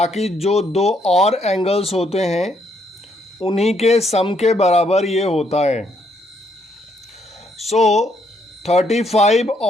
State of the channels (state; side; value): normal; both; correlation 0.72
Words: जो दो और एंगल्स होते हैं उन्हीं के सम के बराबर ये होता है। 35